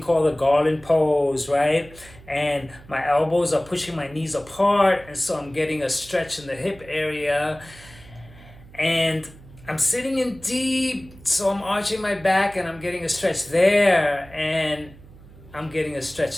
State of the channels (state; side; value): noise; right; hum, 21 dB below the sound